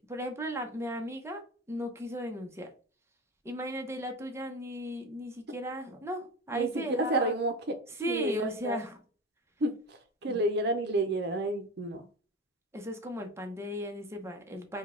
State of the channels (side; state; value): both; normal; correlation 0.27